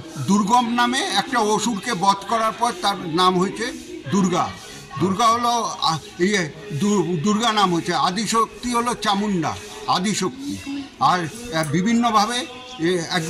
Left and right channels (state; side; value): identical; both; correlation 1.00